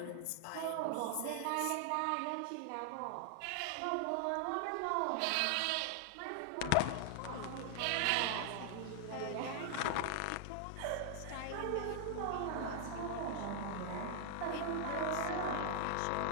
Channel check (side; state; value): both; different; correlation 0.00